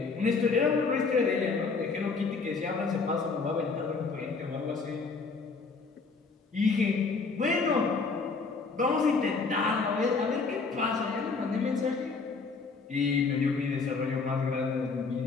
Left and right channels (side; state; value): right; quieter; 4.5 dB